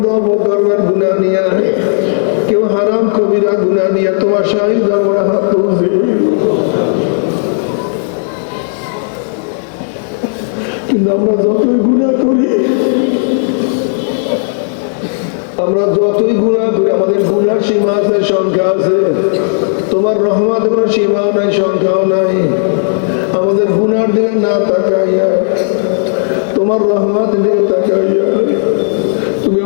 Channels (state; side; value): silent; right; digital silence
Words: বকরমের গুনাহ নিয়া, কেউ হারাম কবিরা গুনাহ নিয়া তোমার শাহী দরবারে হাত তুলছি। কিন্তু আমরা যতই গুনাহ করি, আমাদের গুনার সীমা আছে, সংখ্যা আছে। তোমার রহমত কোনো সীমাও নাই, সংখ্যাও নাই। আমাদের গুনার দিকে না তাকাইয়া তোমার রহমতের দিকে তাকাইয়া তুমি